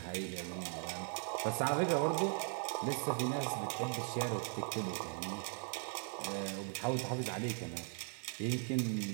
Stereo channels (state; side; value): silent; left; 52 dB below the other